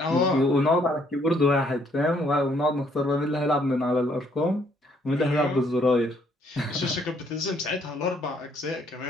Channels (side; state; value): both; normal; correlation 0.67